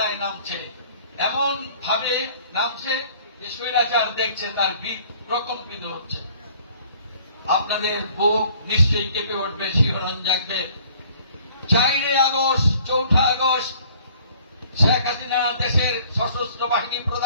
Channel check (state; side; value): inverted; both; correlation -0.56